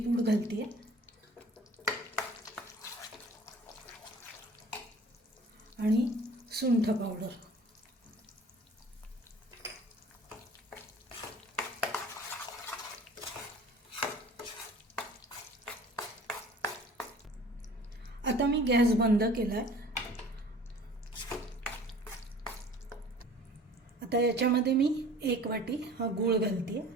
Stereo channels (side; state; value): both; normal; correlation 0.47